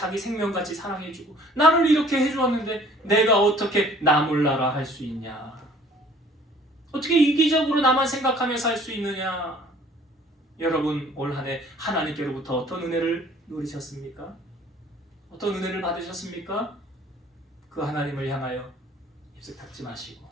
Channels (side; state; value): both; normal; correlation 0.54